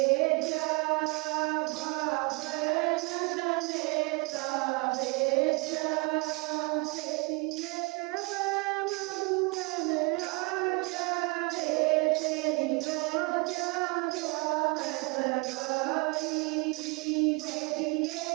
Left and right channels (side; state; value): left; quieter; 28.5 dB